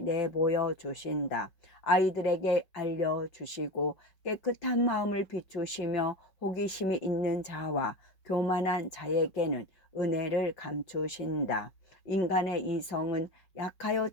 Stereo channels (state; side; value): late; right; 5.3 ms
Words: 내보여 주신다. 아이들에게 알려주시고 깨끗한 마음을 비추시며 호기심이 있는 자와 교만한 자에게는 은혜를 감추신다. 인간의 이성은 약하여